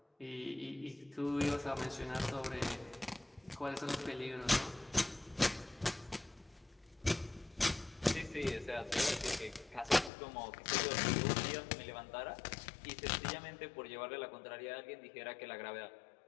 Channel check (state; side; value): drops out; right; at 10.1 s